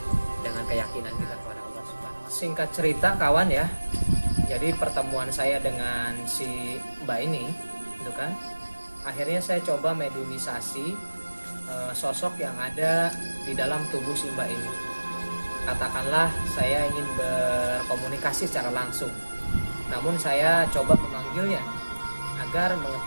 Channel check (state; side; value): inverted; both; correlation -1.00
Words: dengan keyakinan kita kepada Allah Subhanahu wa Ta'ala. Singkat cerita kawan ya, jadi pertemuan saya dengan si mbak ini, gitu kan, akhirnya saya coba mediumisasi sosok yang ada di dalam tubuh si mbak ini. Katakanlah saya ingin berkomunikasi secara langsung, namun saya coba memanggilnya agar